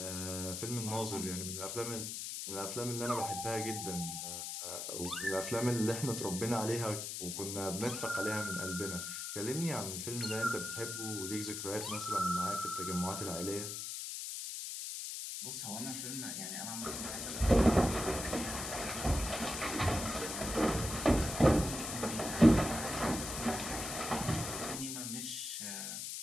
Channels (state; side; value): noise; left; hiss, 5 dB below the sound